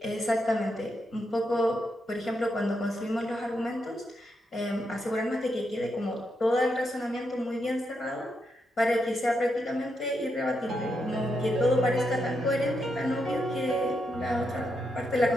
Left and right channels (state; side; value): normal; both; correlation 0.82